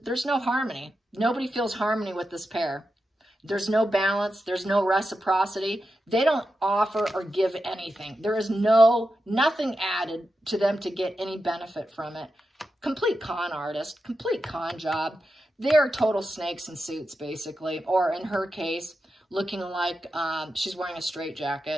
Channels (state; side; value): normal; both; correlation 0.89